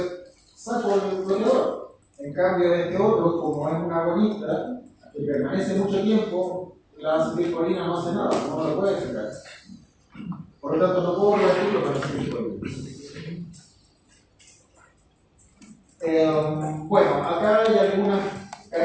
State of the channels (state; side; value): identical; both; correlation 1.00